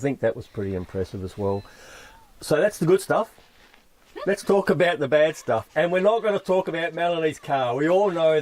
that was pretty impressive as well. So that's the good stuff. let's talk about the bad stuff. And we're not going to talk about Melanie's car. We all know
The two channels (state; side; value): identical; both; correlation 1.00